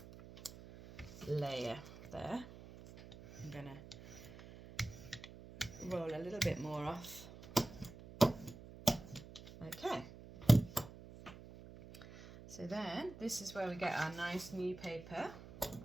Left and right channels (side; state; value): right; noise; hum, 16 dB below the sound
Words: layer there. I'm going to roll a little bit more off. Okay. So then, this is where we get our nice new paper.